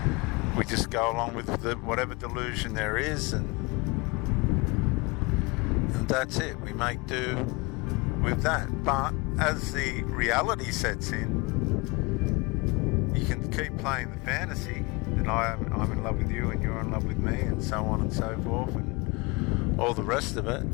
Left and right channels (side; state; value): right; quieter; 26.6 dB